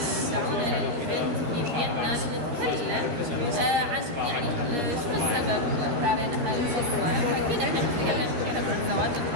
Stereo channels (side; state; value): left; late; 13 ms